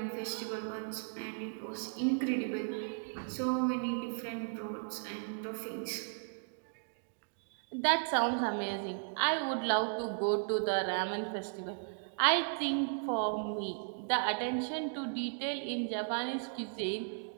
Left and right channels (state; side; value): silent; left; digital silence